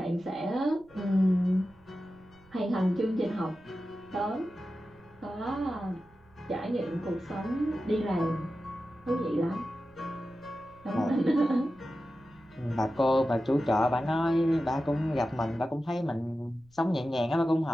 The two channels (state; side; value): noise; right; rumble, 29 dB below the sound